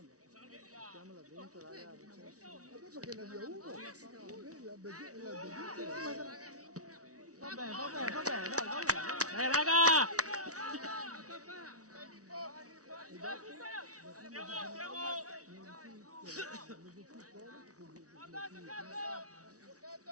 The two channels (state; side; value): late; left; 0.67 ms